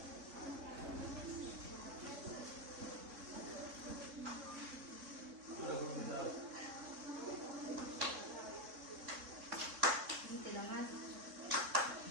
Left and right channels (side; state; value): left; late; 3.6 ms